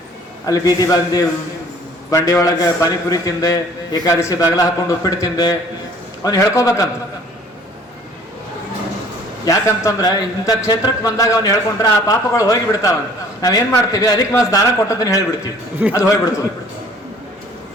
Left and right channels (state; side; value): normal; both; correlation 0.53